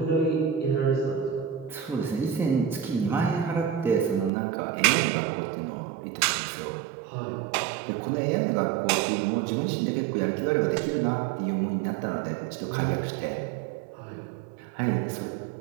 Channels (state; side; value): drops out; left; at 4.3 s